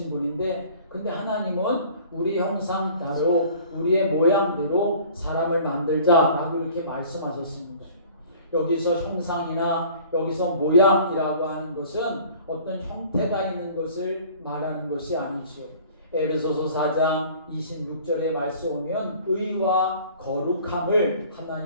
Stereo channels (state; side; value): inverted; both; correlation -0.49